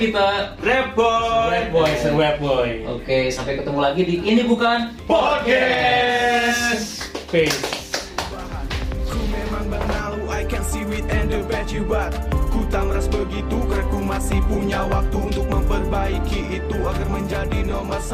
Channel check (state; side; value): identical; both; correlation 1.00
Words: kita. Rap Boy. Web Boy, Web Boy. Oke, sampai ketemu lagi di Ini Bukan Podcast. Peace. can see it and the bad you but ku tak meras begitu karena ku masih punya waktu untuk memperbaiki itu agar menjadi nomor